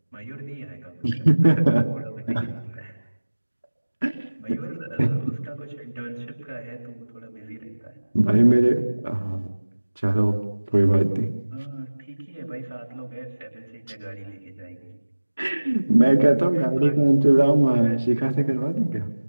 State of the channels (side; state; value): both; inverted; correlation -1.00